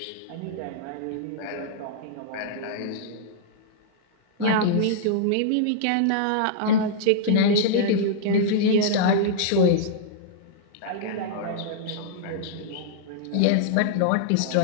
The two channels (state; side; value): different; both; correlation -0.02